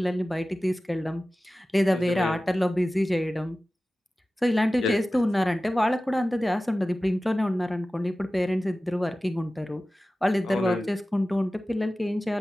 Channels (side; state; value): both; normal; correlation 0.96